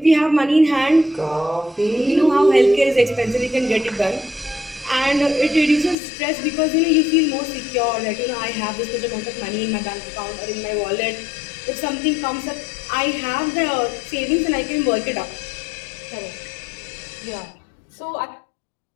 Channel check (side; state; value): right; drops out; at 6.0 s